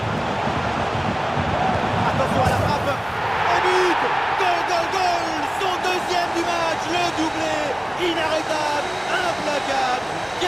Attention à la frappe. Un but. Goal. Son deuxième du match. Le doublé. Inarrêtable. Implacable.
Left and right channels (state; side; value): noise; right; hum, 30 dB below the sound